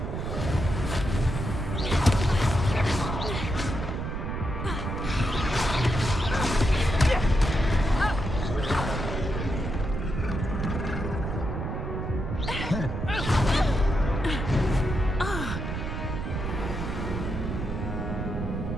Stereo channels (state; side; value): noise; right; rumble, 3 dB below the sound